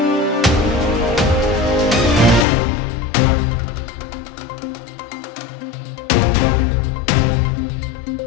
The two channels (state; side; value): drops out; right; at 2.5 s